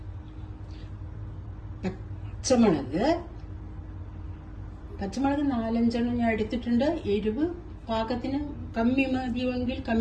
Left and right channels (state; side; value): identical; both; correlation 1.00